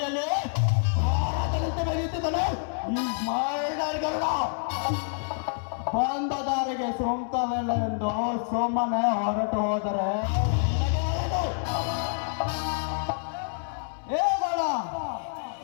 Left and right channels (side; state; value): right; silent; 60 dB below the other